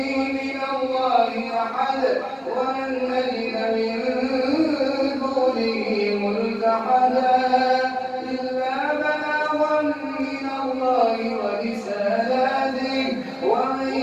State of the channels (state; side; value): identical; both; correlation 1.00